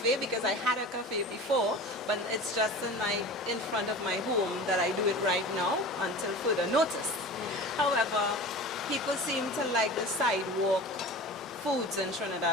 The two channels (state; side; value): normal; both; correlation 0.35